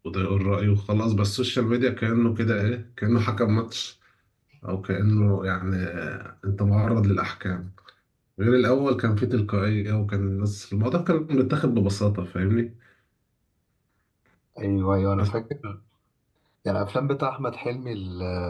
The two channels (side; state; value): both; identical; correlation 1.00